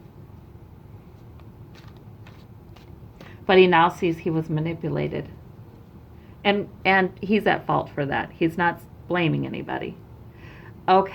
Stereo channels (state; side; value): identical; both; correlation 1.00